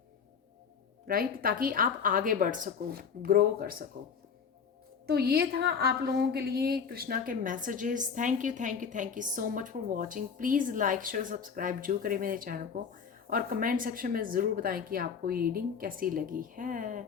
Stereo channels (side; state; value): right; quieter; 6.4 dB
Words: राइट, ताकि आप आगे बढ़ सको, ग्रो कर सको। तो ये था आप लोगों के लिए कृष्णा के messages. Thank you thank you thank you so much for watching. Please like share subscribe जरूर करें मेरे चैनल को, और कमेंट सेक्शन में ज़रूर बताएं कि आपको ये रीडिंग कैसी लगी है।